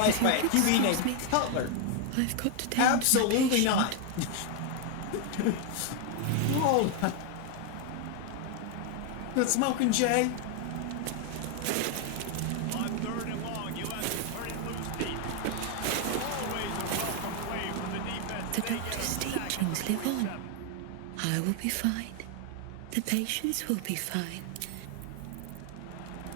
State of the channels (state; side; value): different; both; correlation 0.01